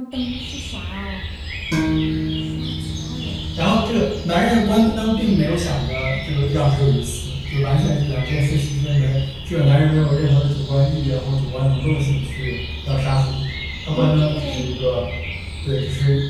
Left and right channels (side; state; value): both; identical; correlation 1.00